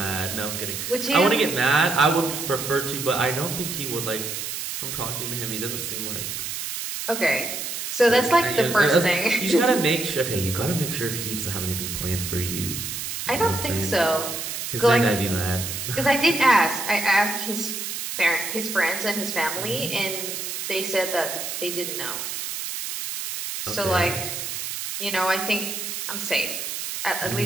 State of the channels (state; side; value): noise; right; hiss, 5 dB below the sound